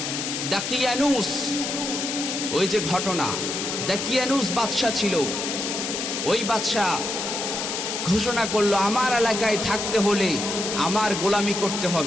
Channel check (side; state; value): left; noise; hiss, 3 dB below the sound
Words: দাকিয়ানুস, ওই যে ঘটনা, দাকিয়ানুস বাদশা ছিল। ওই বাদশা ঘোষণা করলো, আমার এলাকায় থাকতে হলে আমার গোলামি করতে